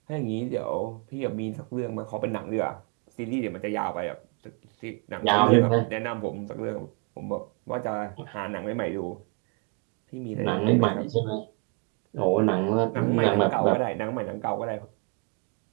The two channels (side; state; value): left; quieter; 33.8 dB